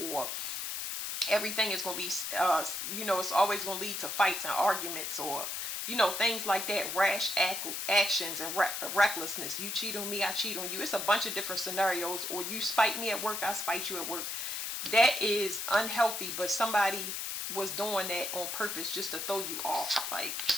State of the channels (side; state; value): left; noise; hiss, 3 dB below the sound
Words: everything is going to be, it's always going to lead to fights and arguments, or, things like that, rash actions and recklessness. You cheat on me, I cheat on you. It's a bunch of different scenarios. Or you spite me at work, I spite you at work. That is unhealthy, but somebody was doing that on purpose just to throw you off. Like,